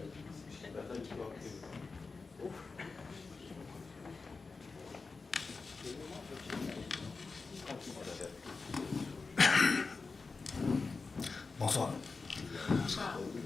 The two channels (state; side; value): quieter; right; 4.3 dB